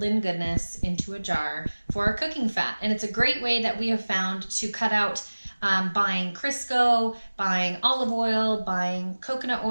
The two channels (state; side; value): inverted; both; correlation -1.00